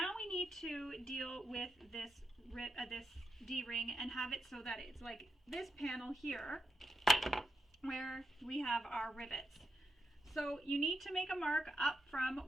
we need to deal with this D-ring and have it so that it's like this panel here where we have our rivets. So you need to make a mark up from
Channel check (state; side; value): normal; both; correlation 0.85